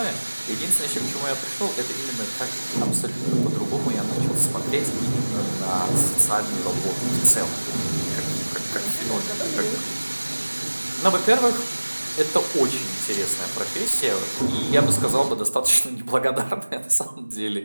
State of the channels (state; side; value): inverted; both; correlation -1.00